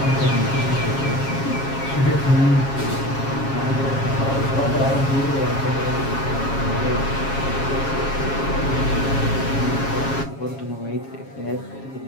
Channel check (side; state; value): right; late; 7.3 ms